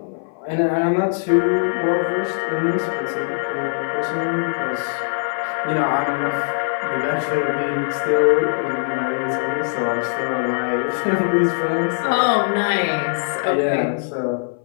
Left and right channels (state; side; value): silent; right; 59 dB below the other